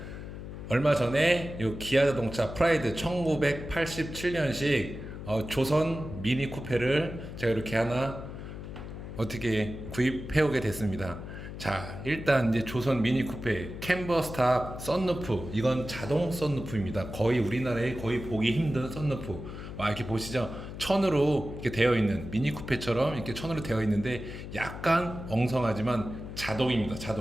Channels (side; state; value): left; noise; hum, 10 dB below the sound